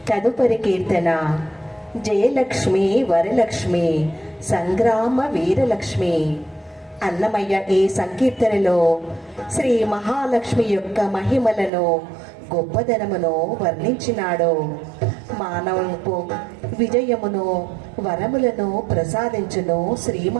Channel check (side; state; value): left; drops out; at 11.7 s